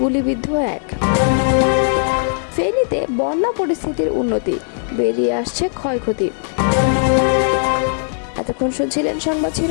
গুলিবিদ্ধ এক। ফেনীতে বন্যা পরিস্থিতির উন্নতি, বেরিয়ে আসছে ক্ষয়ক্ষতি। এতক্ষণ শুনছিলেন সংবাদ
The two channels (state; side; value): silent; right; digital silence